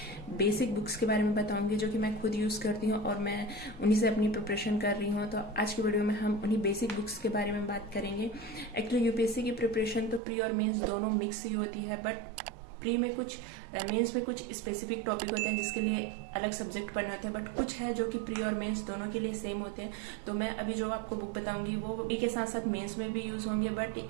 बेसिक बुक्स के बारे में बताऊंगी जो कि मैं खुद यूज़ करती हूँ और मैं उन्हीं से अपनी प्रिपरेशन कर रही हूँ। तो आज की वीडियो में हम उन्हीं बेसिक बुक्स के बारे में बात करेंगे। एक्चुअली यूपीएससी की प्रिपरेशन तो प्री और मेंस दोनों मिक्स ही होती है, बट प्री में कुछ मेंस में कुछ स्पेसिफिक टॉपिक होते हैं जिसके लिए अलग सब्जेक्ट पढ़ने होते हैं, बट कुछ है जो कि प्री और मेंस दोनों के लिए सेम होते हैं। तो मैं अभी जो आपको बुक बताऊंगी वो प्री के साथ साथ मेंस में भी यूज़ होंगे, बट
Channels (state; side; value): drops out; left; at 10.2 s